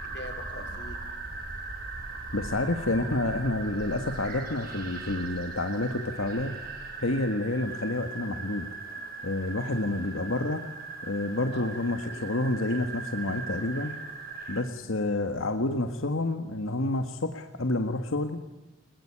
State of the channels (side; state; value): both; normal; correlation 0.32